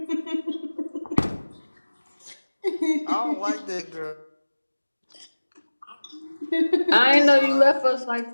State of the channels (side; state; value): both; inverted; correlation -1.00